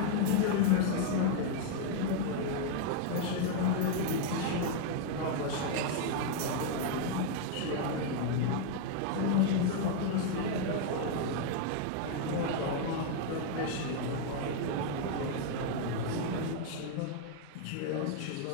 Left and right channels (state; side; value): different; both; correlation 0.00